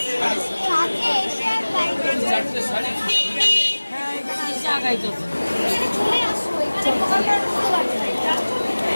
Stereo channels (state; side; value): inverted; both; correlation -1.00